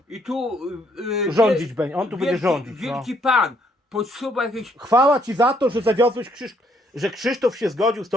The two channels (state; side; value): normal; both; correlation 0.69